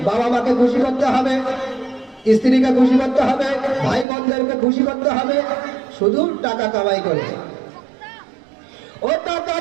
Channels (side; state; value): left; drops out; at 4.0 s